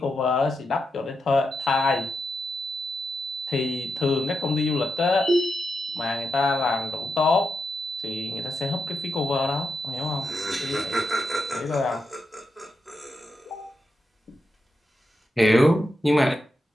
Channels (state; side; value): normal; both; correlation 0.85